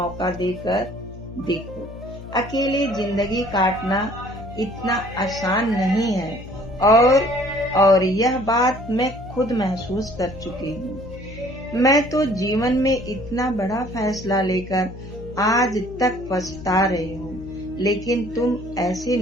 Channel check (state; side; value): noise; left; hum, 14 dB below the sound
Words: देकर देखो, अकेले जिंदगी काटना इतना आसान नहीं है और यह बात मैं खुद महसूस कर चुकी हूँ। मैं तो जीवन में इतना बड़ा फैसला लेकर आज तक पछता रही हूँ, लेकिन तुम ऐसी